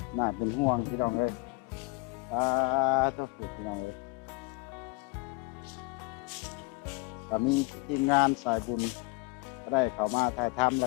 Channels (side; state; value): right; quieter; 24.6 dB